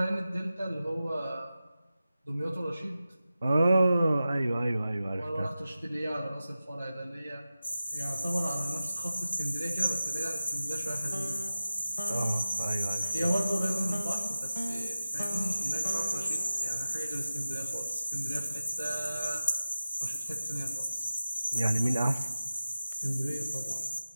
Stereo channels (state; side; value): inverted; both; correlation -0.95